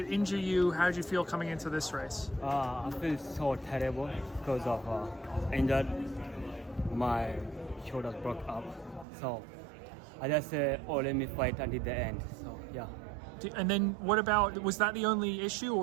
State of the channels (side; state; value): left; drops out; at 9.1 s